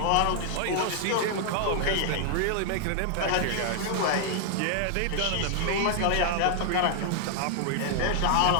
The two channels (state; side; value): different; both; correlation 0.00